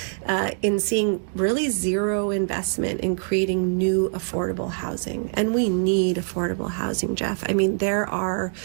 in seeing really zero investment in creating new affordable housing. And we need affordable housing, Jeff. I mean, there are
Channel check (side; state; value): left; silent; digital silence